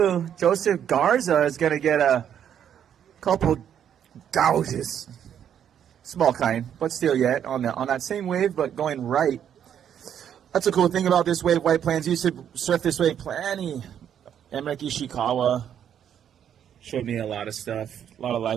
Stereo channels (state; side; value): quieter; left; 9.2 dB